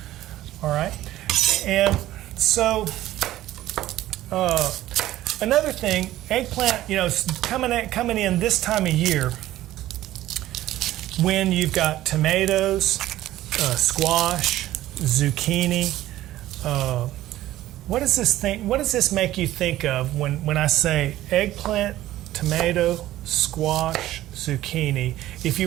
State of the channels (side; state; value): left; quieter; 14.7 dB